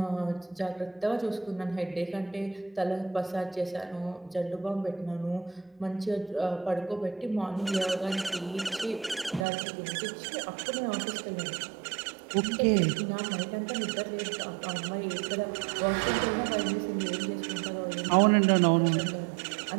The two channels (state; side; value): drops out; left; at 9.5 s